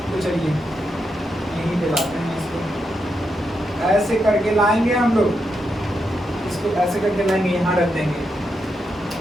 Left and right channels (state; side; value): normal; both; correlation 0.84